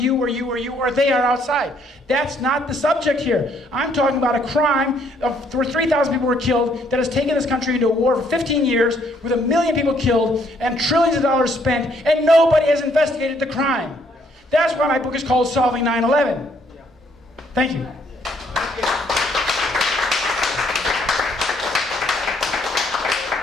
or they are outside. That's not the subject here. I'm talking about a crime where 3,000 people were killed that has taken this country into a war for 15 years with 1 million people killed and trillions of dollars spent, and nobody has investigated the crime. That's why my book is called Solving 9/11. Thank you.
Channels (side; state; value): both; normal; correlation 0.67